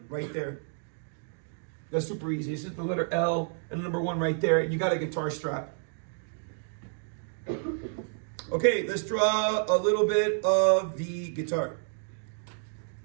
right there. That's super easy. It's just the letter L and the number 1 right there. You got a guitar strap. Okay, let's draw a little bit of the guitar.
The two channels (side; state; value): left; silent; 58 dB below the other